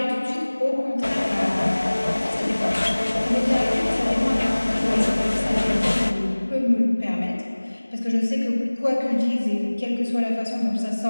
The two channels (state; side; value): inverted; both; correlation -1.00